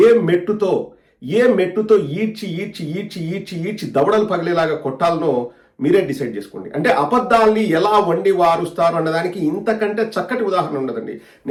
ఏ మెట్టుతో ఈడ్చి దవడలు పగిలేలాగా కొట్టాలనో మీరే డిసైడ్ చేసుకోండి. అంటే అబద్ధాల్ని ఎలా వండి వారుస్తారు అన్నదానికి ఇంతకంటే చక్కటి ఉదాహరణ ఉండదండి.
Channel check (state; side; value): identical; both; correlation 1.00